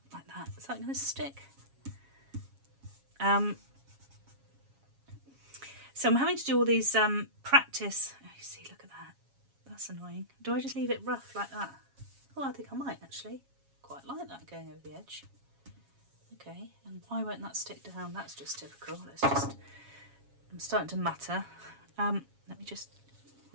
like that, is that going to stick? So I'm having to do all these practice. Oh, you see, look at that. That's annoying. Do I just leave it rough like that? Oh, I think I might actually. Quite like that going over the edge. Okay, and why won't that stick down? That's just typical. I'm starting to matter. Let me just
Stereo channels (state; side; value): late; left; 7.3 ms